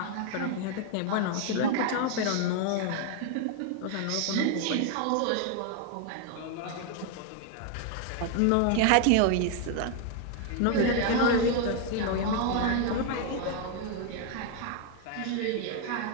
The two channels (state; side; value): different; both; correlation 0.01